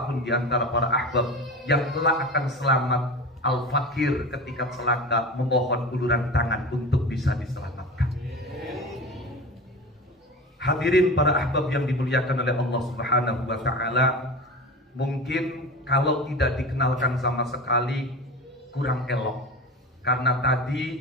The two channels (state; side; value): normal; both; correlation 0.31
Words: di antara para ahbab yang telah akan selamat, Al-Faqir ketika celaka memohon uluran tangan untuk bisa diselamatkan. Hadirin para ahbab yang dimuliakan oleh Allah Subhanahu wa taala, mungkin kalau tidak dikenalkan sama sekali kurang elok, karena